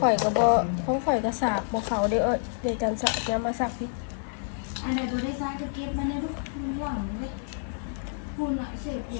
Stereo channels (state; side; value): silent; right; 59 dB below the other